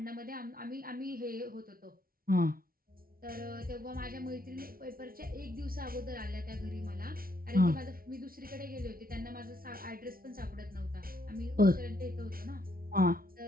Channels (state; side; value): late; left; 0.43 ms